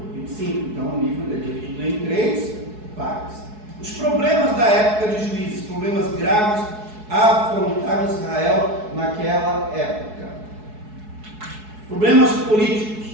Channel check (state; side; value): late; left; 4.7 ms